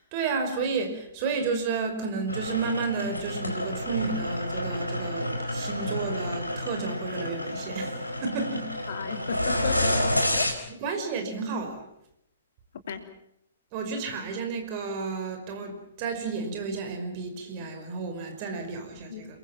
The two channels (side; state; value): both; inverted; correlation -0.57